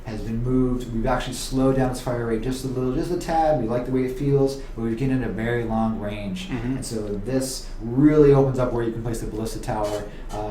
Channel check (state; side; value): identical; both; correlation 1.00